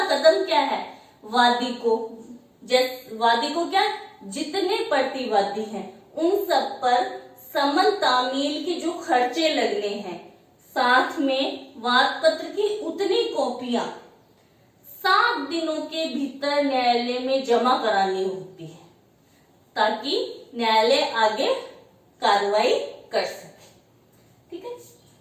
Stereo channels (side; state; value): both; identical; correlation 1.00